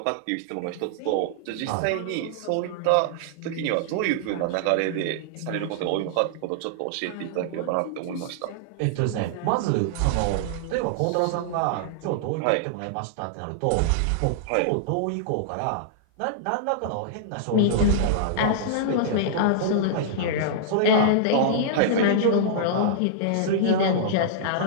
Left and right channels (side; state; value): both; different; correlation -0.01